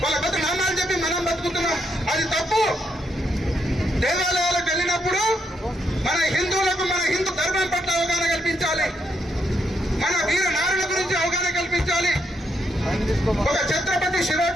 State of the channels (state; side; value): normal; both; correlation 0.78